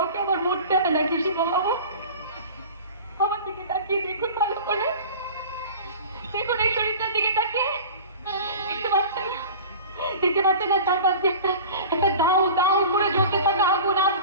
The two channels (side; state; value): both; inverted; correlation -0.38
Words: আমার মরতে হয় নাকি শিববাবু? আমার দিকে তাকিয়ে দেখুন ভালো করে, দেখুন এই শরীরটার দিকে তাকিয়ে। দেখতে পাচ্ছেন না চারপাশ দিয়ে একটা দাউ দাউ করে জ্বলতে থাকা আগুন